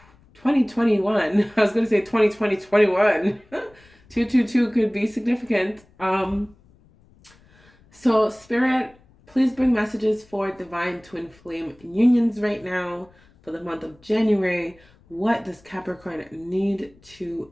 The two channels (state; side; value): noise; left; rumble, 29 dB below the sound